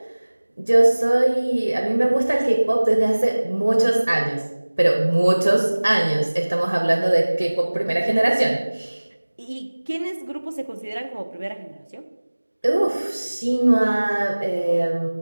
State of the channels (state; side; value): inverted; both; correlation -1.00